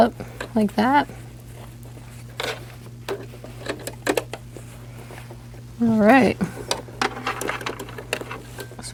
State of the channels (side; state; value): both; identical; correlation 1.00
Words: like that. All right. So